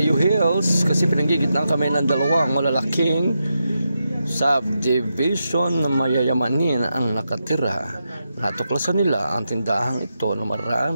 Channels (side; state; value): both; inverted; correlation -0.86